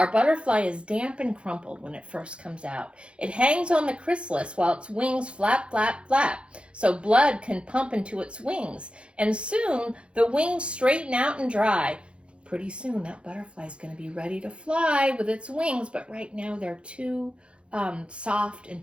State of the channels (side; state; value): left; late; 0.058 ms